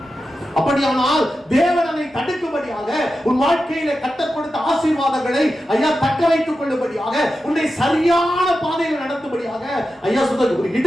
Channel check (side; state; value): both; normal; correlation 0.91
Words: அப்படியானால் தேவன் அதை தடுக்கும்படியாக உன் வாழ்க்கையில கர்த்தர் கொடுத்த ஆசீர்வாதங்களை ஐயா தக்க வைத்துக் கொள்ளும்படியாக உன்னை சரியான பாதையில் நடத்தும்படியாக ஐயா சொல்றது ஒரு